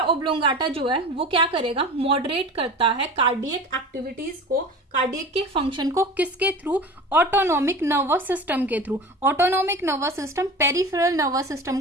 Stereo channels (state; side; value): normal; both; correlation 0.35